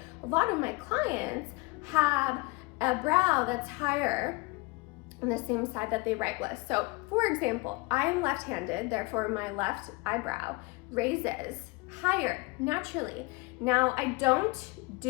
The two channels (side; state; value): right; quieter; 25.9 dB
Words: a lot of my clients have a brow that's higher on the same side that they write with. So, for example, I am left-handed, therefore my left eyebrow raises higher naturally. Now, I don't